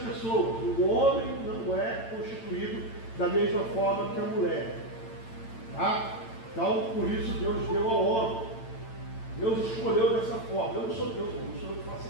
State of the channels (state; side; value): late; right; 8.9 ms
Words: O homem não é constituído da mesma forma que a mulher, tá? Então, por isso Deus deu ao homem. Deus escolheu dessa forma. Eu não sou Deus, não sou eu que faço